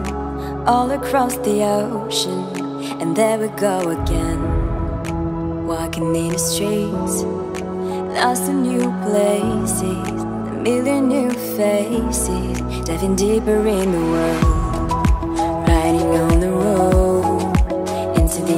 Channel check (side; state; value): both; identical; correlation 1.00